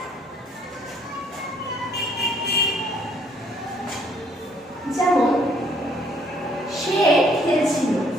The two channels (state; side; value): normal; both; correlation 0.64